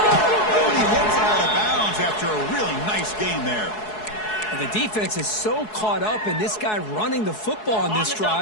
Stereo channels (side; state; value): right; late; 4.7 ms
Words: and he hits out of bounds after a really nice gain there. And the defense is so caught up in this guy running the football on this